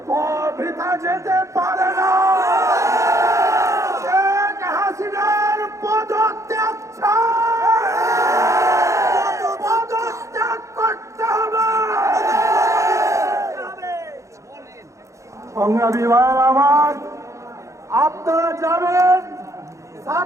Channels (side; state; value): left; late; 0.15 ms